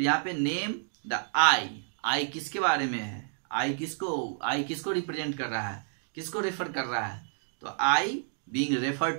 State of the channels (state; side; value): silent; left; digital silence